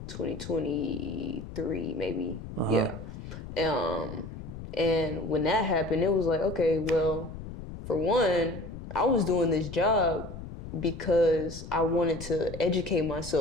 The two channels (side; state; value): left; noise; rumble, 11 dB below the sound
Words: 2023, maybe. Yeah. And when that happened, it was like, okay, well, for one, I was doing this job because I wanted to educate